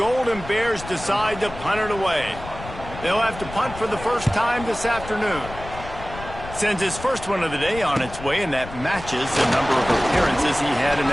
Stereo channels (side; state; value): left; noise; rumble, 13 dB below the sound